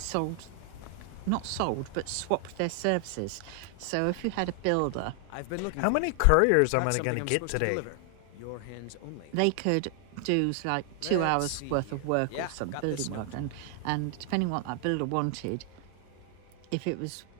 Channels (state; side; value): different; both; correlation 0.00